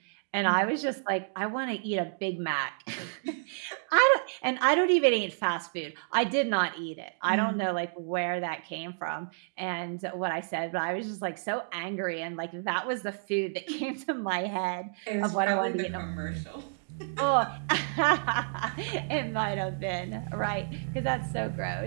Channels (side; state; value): left; silent; digital silence